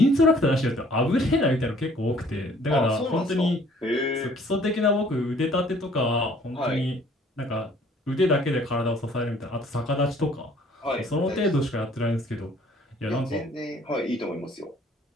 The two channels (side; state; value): both; normal; correlation 0.57